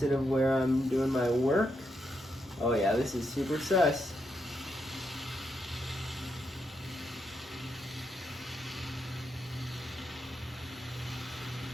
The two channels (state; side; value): normal; both; correlation 0.81